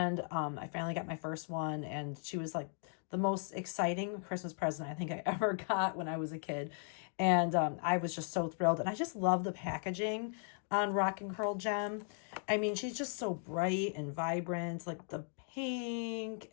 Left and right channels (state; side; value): silent; right; 53 dB below the other